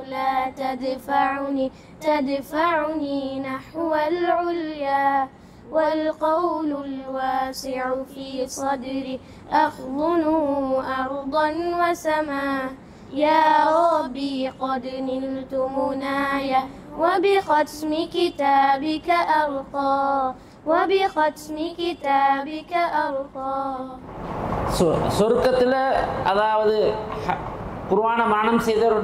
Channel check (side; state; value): both; identical; correlation 1.00